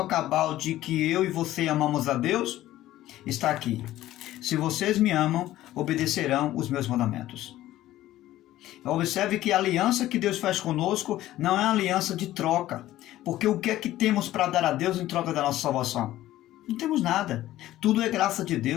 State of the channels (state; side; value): quieter; right; 14.6 dB